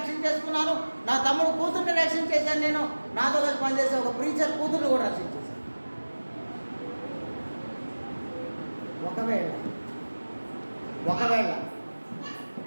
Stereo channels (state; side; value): inverted; both; correlation -1.00